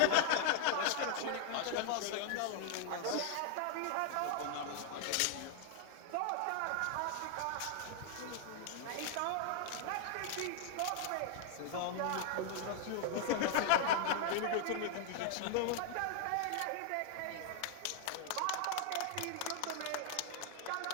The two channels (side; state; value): both; different; correlation -0.01